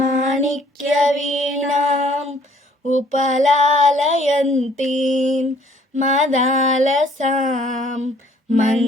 వీణాం ఉపలాలయంతీం మదాలసాం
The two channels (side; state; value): both; normal; correlation 0.60